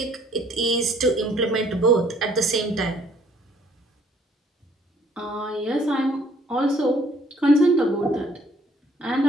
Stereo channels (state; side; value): normal; both; correlation 0.61